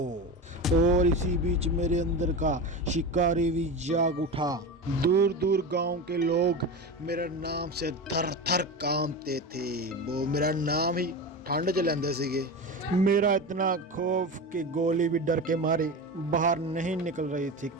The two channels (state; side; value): normal; both; correlation 0.25